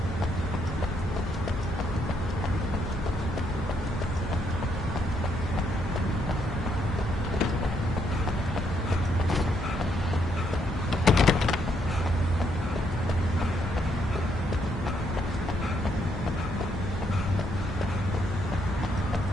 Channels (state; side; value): normal; both; correlation 0.74